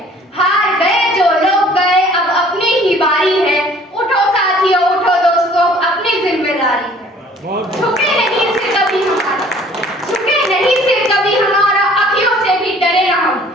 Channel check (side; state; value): both; normal; correlation 0.54